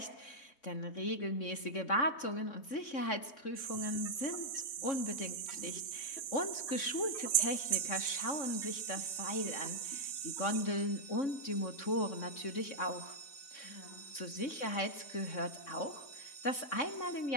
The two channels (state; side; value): late; right; 3.6 ms